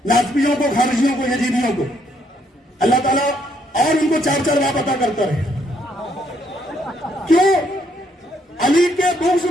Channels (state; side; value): normal; both; correlation 0.71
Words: नाज़मियों को, खारिजियों को, यजीदियों को। अल्लाह ताला और उनको चार चार बात अता करता रहे। क्यों? अली के बुग़्ज़